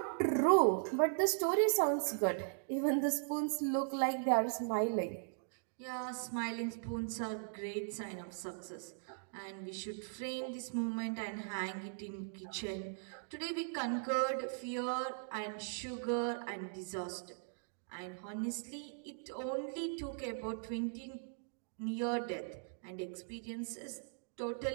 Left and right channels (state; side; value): silent; left; digital silence